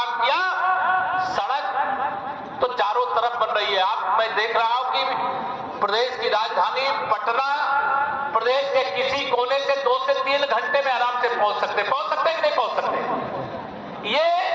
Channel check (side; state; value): both; identical; correlation 1.00